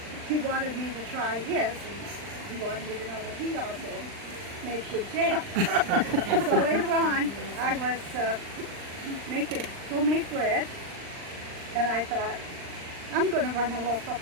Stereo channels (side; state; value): left; late; 39 ms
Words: He wanted me to try his, and he wanted me to know that he also made good jam. So later on, I was making homemade bread, and I thought, I'm going to run a loaf up